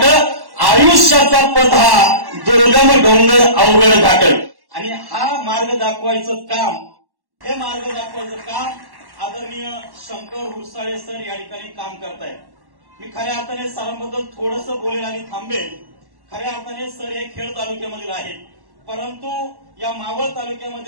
आयुष्याचा पथ हा दुर्गम डोंगर अवघड घाट. आणि हा मार्ग दाखवायचं काम, हे मार्ग दाखवायचं काम आदरणीय शंकर हुरसाळे सर या ठिकाणी काम करतायत. मी खऱ्या अर्थाने सरांबद्दल थोडंसं बोलेल आणि थांबेल. खऱ्या अर्थाने सर हे खेड तालुक्यामधील आहेत, परंतु या मावळ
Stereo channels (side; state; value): left; late; 1.1 ms